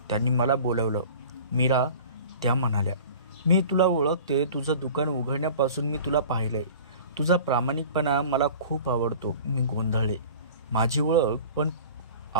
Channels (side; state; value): both; inverted; correlation -0.42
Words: त्यांनी मला बोलवलं. मीरा, त्या म्हणाल्या, मी तुला ओळखते. तुझं दुकान उघडण्यापासून मी तुला पाहिलंय. तुझा प्रामाणिकपणा मला खूप आवडतो. मी गोंधळले. माझी ओळख? पण